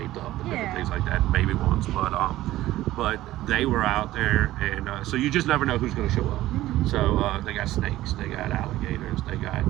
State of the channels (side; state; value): left; quieter; 15.5 dB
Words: up and different things like that, baby ones. But they were out there, and so you just never know who's going to show up. So they got snakes, they got alligators, they got